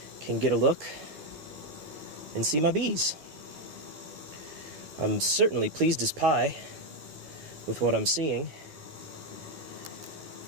can get a look and see my bees. I'm certainly pleased as pie with what I'm seeing.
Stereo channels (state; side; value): late; left; 13 ms